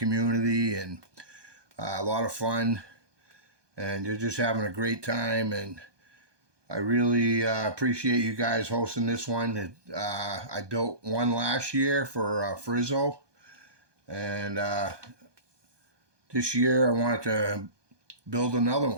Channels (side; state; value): left; late; 1.2 ms